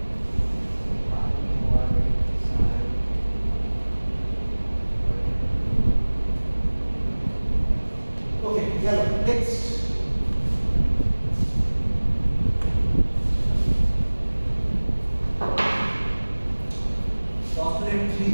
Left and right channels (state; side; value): inverted; both; correlation -1.00